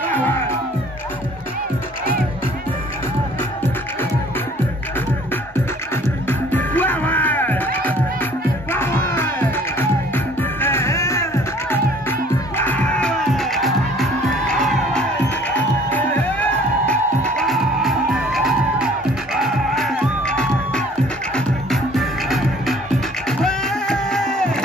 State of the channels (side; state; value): both; normal; correlation 0.54